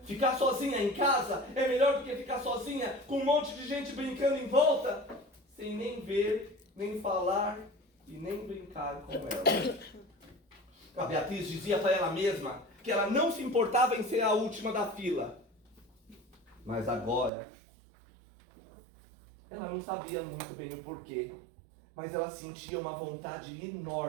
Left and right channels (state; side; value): drops out; left; at 17.3 s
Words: Ficar sozinha em casa é melhor do que ficar sozinha com um monte de gente brincando em volta, sem nem ver, nem falar e nem brincar com ela. A Beatriz dizia para ela mesma que ela não se importava em ser a última da fila. Mas agora, ela não sabia muito bem o porquê, mas ela sentia uma vontade